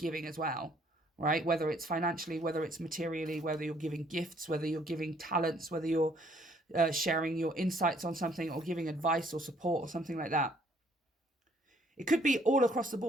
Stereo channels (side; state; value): both; normal; correlation 0.64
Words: as well. Right? Whether it's financially, whether it's materially, whether you're giving gifts, whether you're giving talents, whether you're sharing your insights on something, or giving advice or support or something like that. It could be all across the